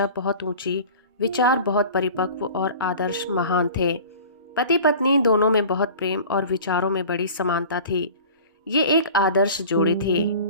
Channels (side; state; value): both; inverted; correlation -0.41